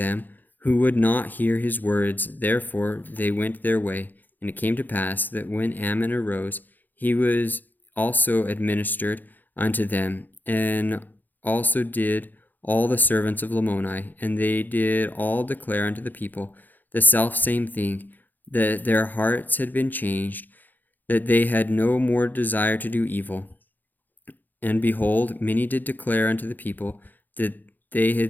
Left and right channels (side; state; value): right; late; 0.086 ms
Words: who would not hear his words. Therefore they went their way, And it came to pass that when Ammon arose, he was also administered unto them, and also did all the servants of Lamoni, and they did all declare unto the people the selfsame thing, that their hearts had been changed, that they had no more desire to do evil. And behold, many did declare unto the people that they